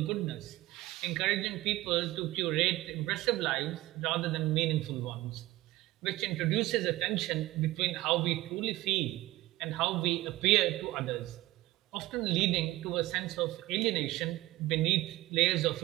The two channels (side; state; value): left; quieter; 17.9 dB